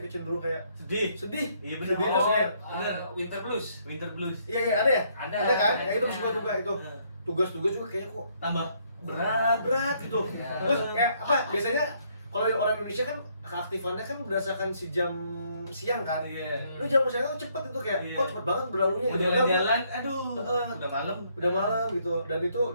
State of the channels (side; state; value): both; inverted; correlation -0.69